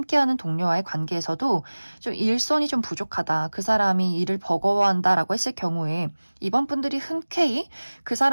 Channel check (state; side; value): inverted; both; correlation -1.00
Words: 동료와의 관계에서도 좀 일손이 좀 부족하다. 그 사람이 일을 버거워한다라고 했을 경우에 이번 분들이 흔쾌히 그